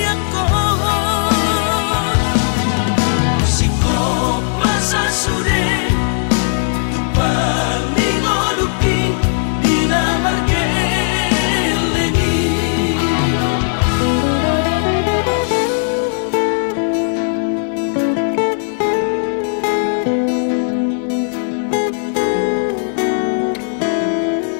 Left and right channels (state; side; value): silent; right; digital silence